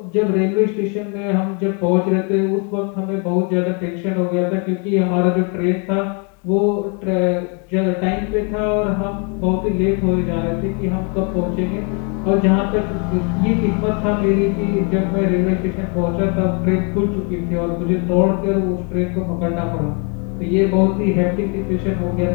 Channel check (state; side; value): quieter; right; 36.6 dB